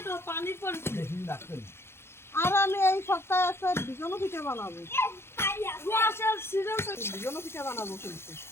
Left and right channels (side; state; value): right; late; 0.12 ms